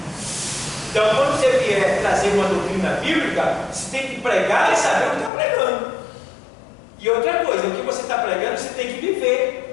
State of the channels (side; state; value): right; drops out; at 5.3 s